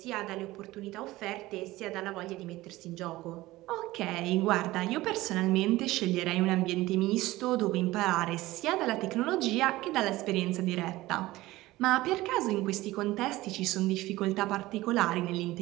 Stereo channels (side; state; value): left; quieter; 18.1 dB